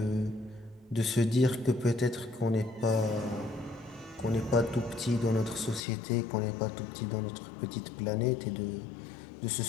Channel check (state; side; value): drops out; right; at 5.8 s